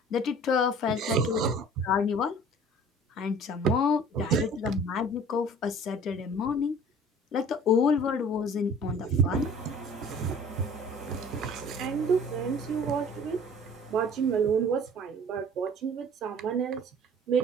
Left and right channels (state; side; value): normal; both; correlation 0.47